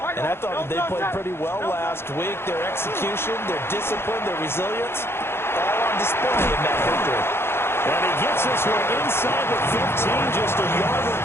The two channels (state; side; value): late; right; 0.12 ms